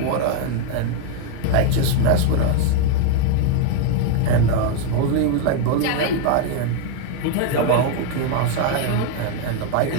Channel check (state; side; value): different; both; correlation 0.01